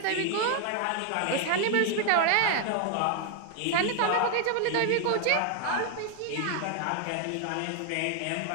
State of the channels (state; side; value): different; both; correlation 0.01